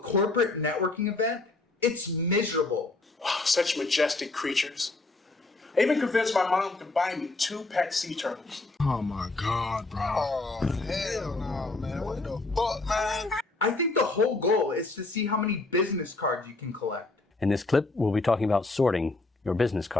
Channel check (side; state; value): right; quieter; 3.2 dB